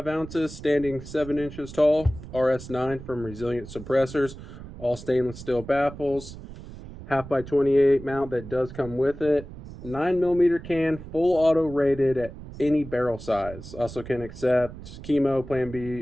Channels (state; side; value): noise; right; rumble, 14 dB below the sound